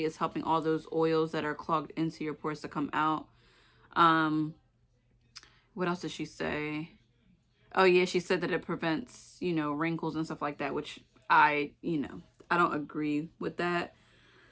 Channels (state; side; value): identical; both; correlation 1.00